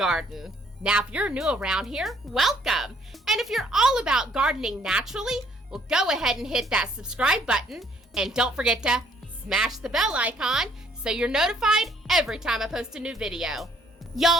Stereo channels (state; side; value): normal; both; correlation 0.64